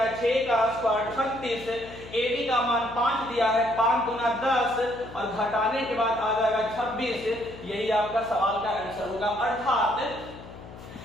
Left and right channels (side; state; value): left; noise; hum, 16 dB below the sound